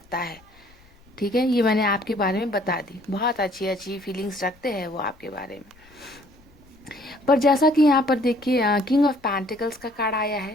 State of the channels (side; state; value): left; noise; rumble, 28 dB below the sound